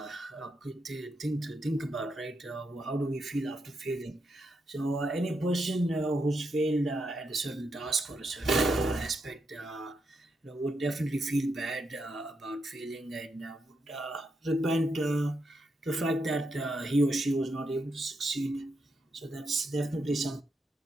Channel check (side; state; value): both; normal; correlation 0.82